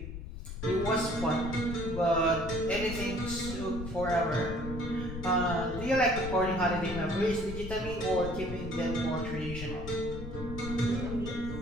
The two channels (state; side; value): noise; left; rumble, 8 dB below the sound